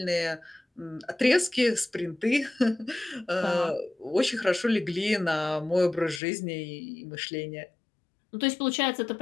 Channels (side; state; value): right; drops out; at 6.2 s